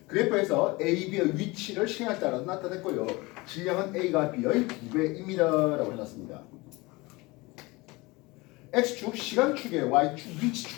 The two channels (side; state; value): right; quieter; 23.3 dB